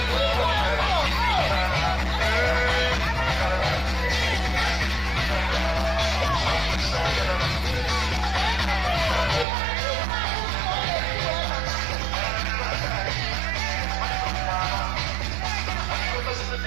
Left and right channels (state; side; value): drops out; left; at 9.5 s